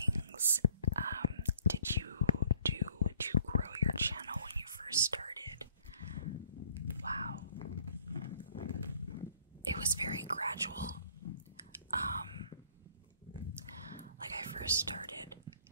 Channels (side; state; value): both; inverted; correlation -0.58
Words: did you do to grow your channel when you first started? Wow. It was very gradual. Like I first started